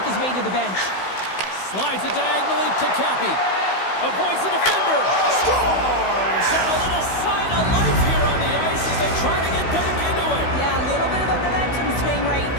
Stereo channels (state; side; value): late; right; 16 ms